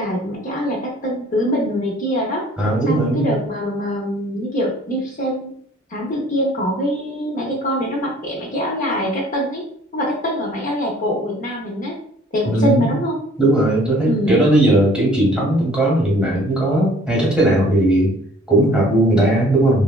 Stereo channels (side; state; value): both; normal; correlation 0.55